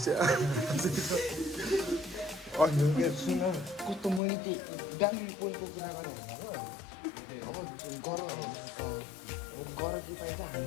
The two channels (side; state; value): right; drops out; at 4.2 s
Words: अनि सुन कस्तो मैले त्यो डाइनिङ पोइन्टको कुरा गरेँ अब गर कि पाइन्छ